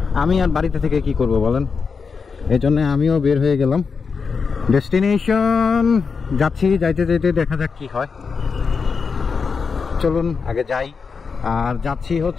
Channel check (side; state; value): right; quieter; 5.4 dB